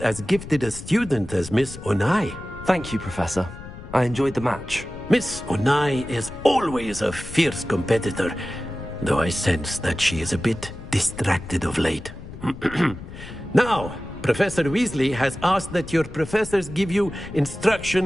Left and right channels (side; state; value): left; noise; rumble, 13 dB below the sound